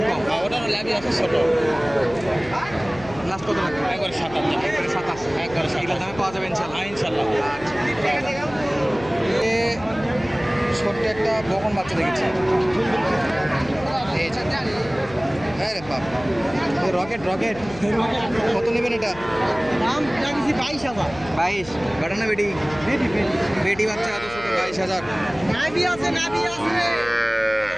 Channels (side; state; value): left; noise; hum, 17 dB below the sound